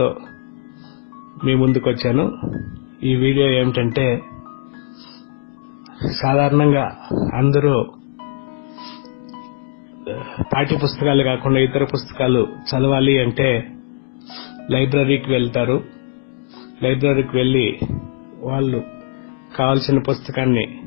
మీ ముందుకు వచ్చాను. ఈ వీడియో ఏమిటంటే, సాధారణంగా అందరూ పాఠ్య పుస్తకాలు కాకుండా ఇతర పుస్తకాలు చదవాలి అంటే లైబ్రరీకి వెళ్తారు. లైబ్రరీకి వెళ్ళి వాళ్ళు కావాల్సిన పుస్తకాన్ని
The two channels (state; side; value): silent; right; digital silence